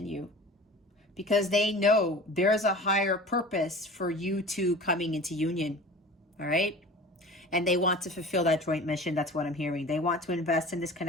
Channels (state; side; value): normal; both; correlation 0.39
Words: you because they know there's a higher purpose for you two coming into union, all right? And they want to fulfill that joint mission. That's what I'm hearing. They want to invest in this